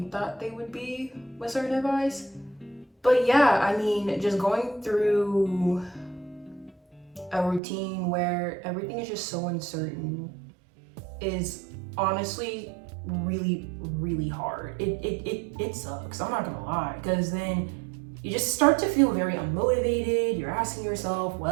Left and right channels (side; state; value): left; drops out; at 7.6 s